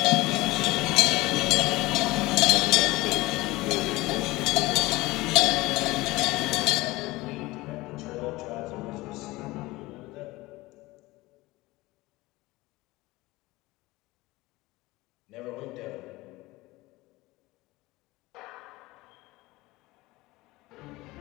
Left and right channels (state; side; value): quieter; right; 20.2 dB